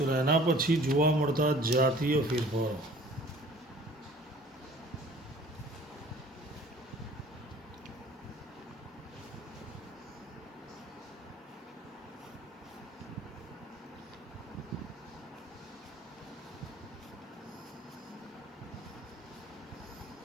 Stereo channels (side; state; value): both; normal; correlation 0.50